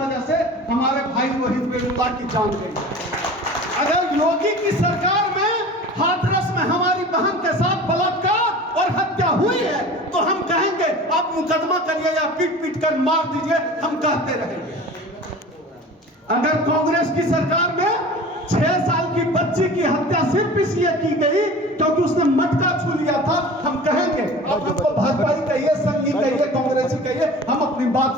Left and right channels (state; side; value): normal; both; correlation 0.39